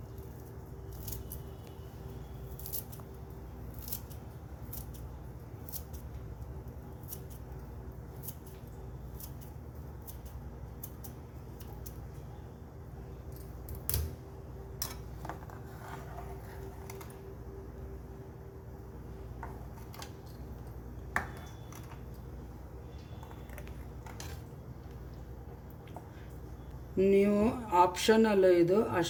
ನೀವು ಆಪ್ಷನಲ್ಲ, ಇದು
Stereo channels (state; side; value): identical; both; correlation 1.00